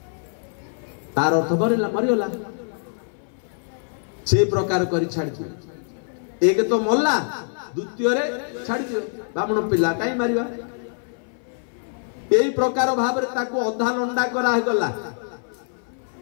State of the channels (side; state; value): right; silent; 58 dB below the other